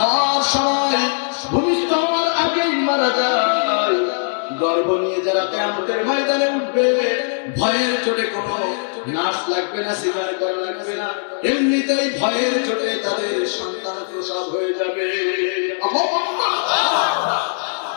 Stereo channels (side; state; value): right; silent; digital silence